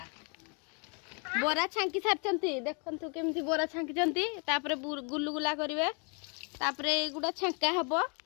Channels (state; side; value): quieter; right; 36.9 dB